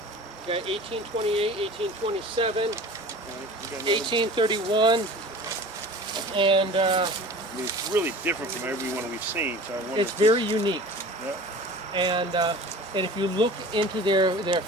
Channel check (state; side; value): normal; both; correlation 0.40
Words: got 1828, 1827, 1831, and I mean, it's really different from every one we've seen. So I wonder. it's very unique. Yeah. And if you look into their